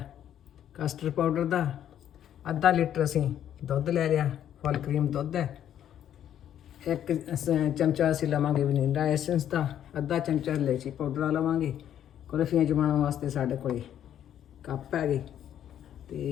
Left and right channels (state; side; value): quieter; right; 10.4 dB